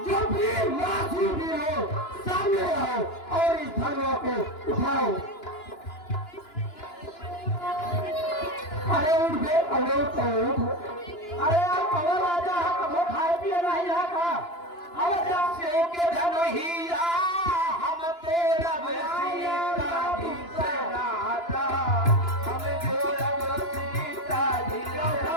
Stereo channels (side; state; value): right; late; 2.9 ms